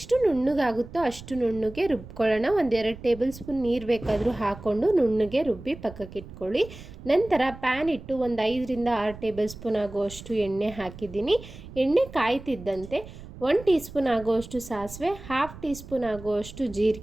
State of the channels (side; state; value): right; noise; rumble, 15 dB below the sound